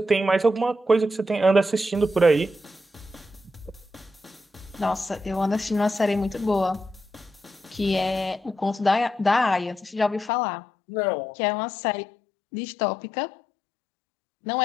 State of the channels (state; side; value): drops out; right; at 10.3 s